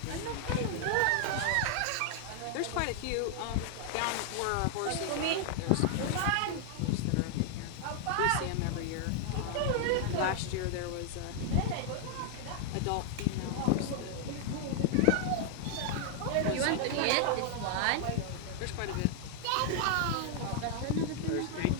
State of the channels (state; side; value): different; both; correlation 0.00